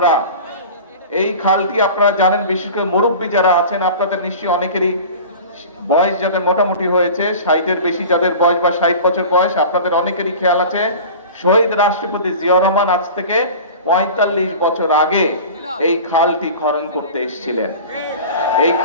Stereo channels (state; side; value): inverted; both; correlation -0.37